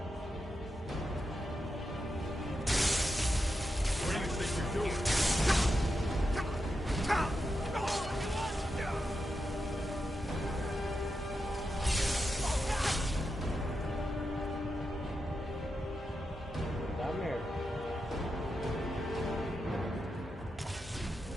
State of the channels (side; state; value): both; normal; correlation 0.87